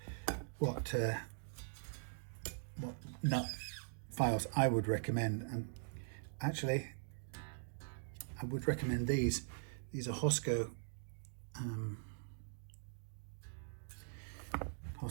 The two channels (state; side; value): silent; left; digital silence